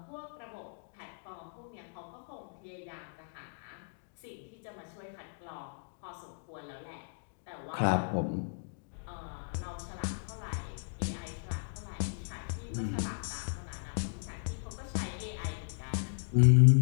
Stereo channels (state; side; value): silent; right; digital silence